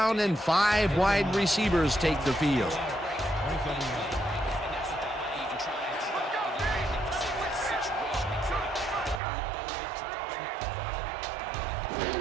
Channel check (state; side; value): drops out; left; at 9.2 s